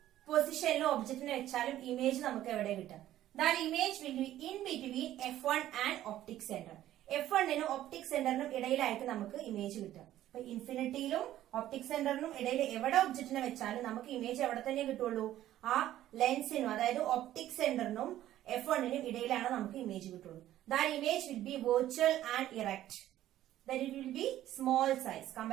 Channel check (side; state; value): left; quieter; 13.2 dB